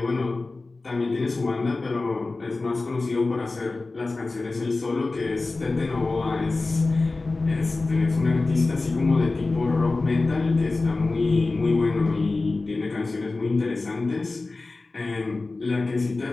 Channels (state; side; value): quieter; right; 3.5 dB